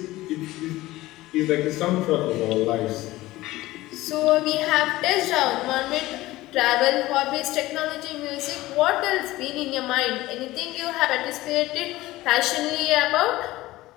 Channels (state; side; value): quieter; right; 17.7 dB